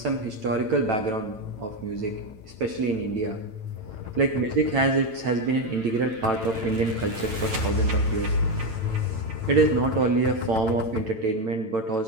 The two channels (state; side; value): late; left; 9.0 ms